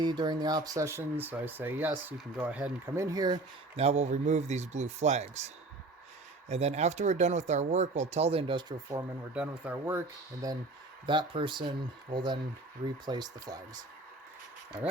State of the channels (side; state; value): left; quieter; 3.1 dB